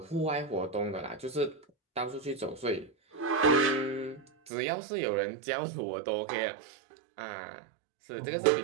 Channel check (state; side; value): drops out; left; at 4.5 s